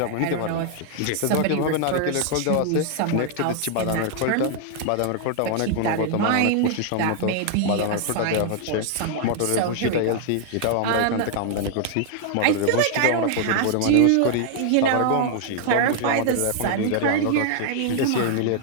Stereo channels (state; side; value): different; both; correlation 0.00